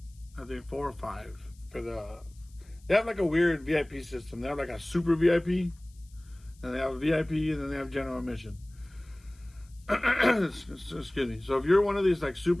I think 4 or 5 for the. They have like a weird VIP system. They have like a super VIP, and they have a VIP, and then they have general admission. Excuse me. So if you're one of these like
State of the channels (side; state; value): left; noise; hiss, 30 dB below the sound